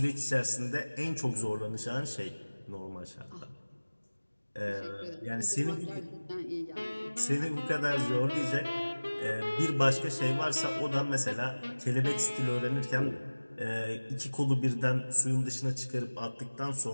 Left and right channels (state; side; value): inverted; both; correlation -1.00